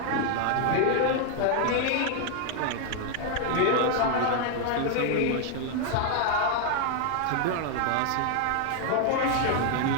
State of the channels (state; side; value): different; both; correlation 0.00